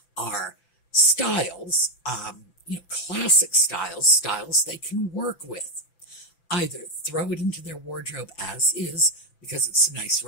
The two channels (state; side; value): late; right; 5.9 ms